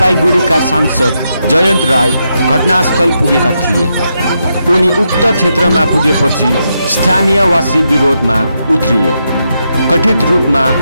सांसद जयन्त राय घटनास्थल पुगेका थिए। उनी उक्त क्षेत्रमा पुगेपछि स्थानीयवासी विरोधमा उत्रिए। कथित रूपमा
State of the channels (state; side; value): inverted; both; correlation -0.83